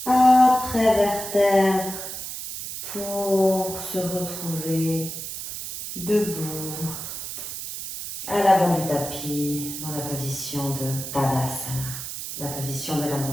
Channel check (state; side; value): noise; right; hiss, 7 dB below the sound